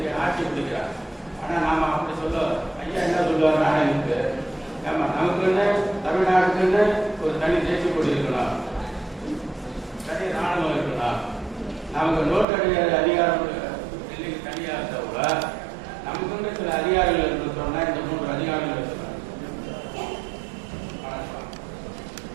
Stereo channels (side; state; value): left; drops out; at 12.5 s